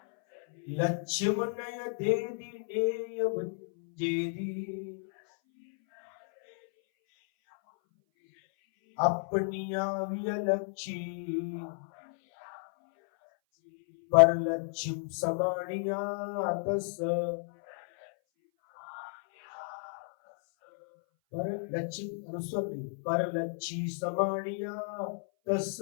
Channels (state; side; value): silent; right; 56 dB below the other